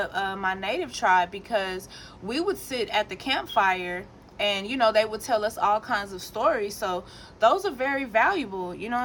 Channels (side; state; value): both; identical; correlation 1.00